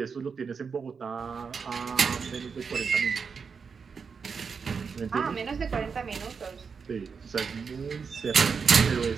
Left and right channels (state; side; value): quieter; left; 5.7 dB